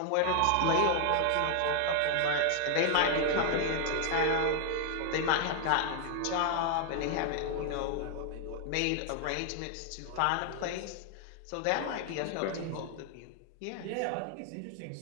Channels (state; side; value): different; both; correlation 0.00